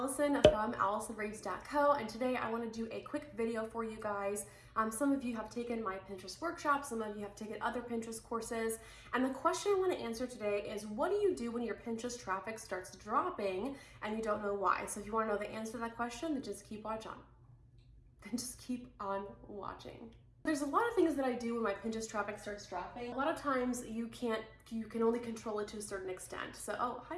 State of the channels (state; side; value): identical; both; correlation 1.00